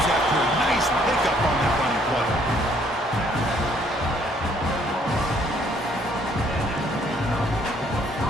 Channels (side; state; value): both; normal; correlation 0.64